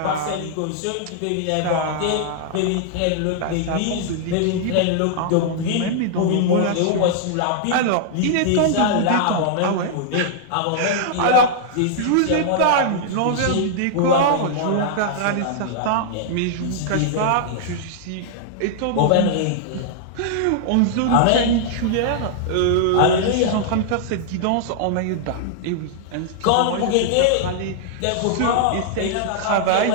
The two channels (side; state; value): both; different; correlation -0.01